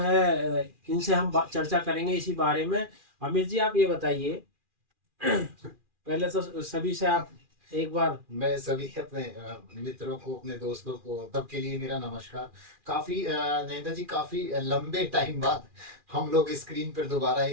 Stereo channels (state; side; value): late; left; 2.4 ms